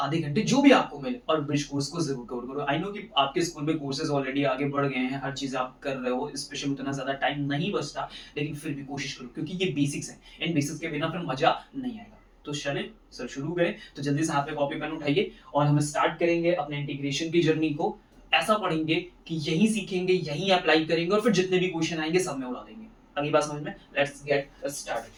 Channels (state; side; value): identical; both; correlation 1.00